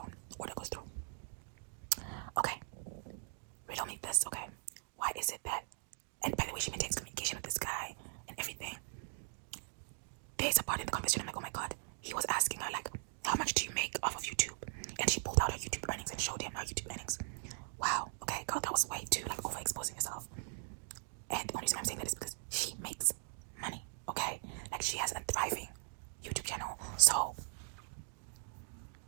Order goes through. Okay, riddle me this, okay? Why is it that, and by the way, she maintains communication with this guy and everything. There's a part in the conversation, I'm like, oh my god, he was asking her, like, how much do you make off of YouTube? And she pulled out her YouTube earnings and showed him her YouTube earnings. Wow, okay, girl, that was way too, like, overexposing yourself. And the only reason I'm saying that is because she makes money, okay? Like, she has a thriving YouTube channel, so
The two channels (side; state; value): left; silent; digital silence